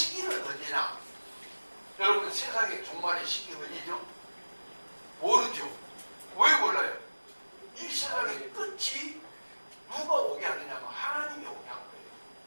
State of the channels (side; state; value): both; inverted; correlation -1.00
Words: 언제냐? 여러분 세상의 종말의 시기 언제죠? 모르죠. 왜 몰라요? 이 세상의 끝이 누가 오게 하느냐면 하나님이 오게 한 거예요.